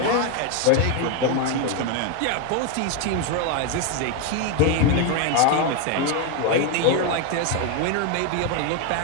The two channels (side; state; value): both; different; correlation 0.01